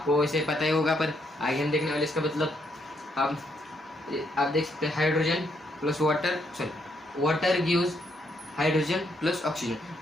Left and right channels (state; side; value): normal; both; correlation 0.75